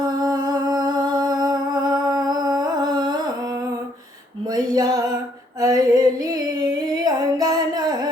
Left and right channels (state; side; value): normal; both; correlation 0.68